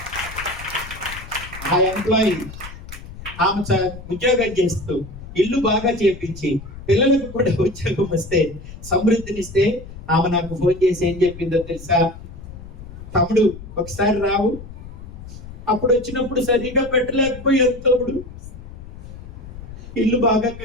ఆ ఎంప్లాయీ ఆమె ఉద్యోగం చేస్తూ ఇల్లు బాగా చేపించి పిల్లలకు కూడా ఉద్యోగం వస్తే సమృద్ధినిస్తే, ఆమె నాకు ఫోన్ చేసి ఏం చెప్పిందో తెలుసా? తమ్ముడు ఒకసారి రావు, అప్పుడు వచ్చినప్పుడు సరిగా పెట్టలేకపోయాను తమ్ముడు, ఇల్లు బాగా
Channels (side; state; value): left; noise; rumble, 14 dB below the sound